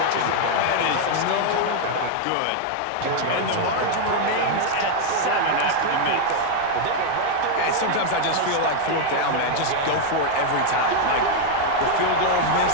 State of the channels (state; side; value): different; both; correlation 0.00